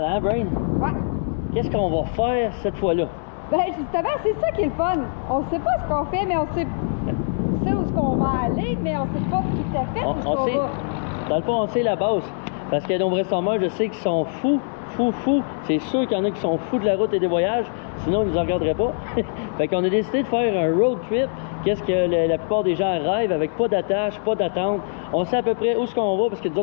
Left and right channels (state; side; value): silent; right; digital silence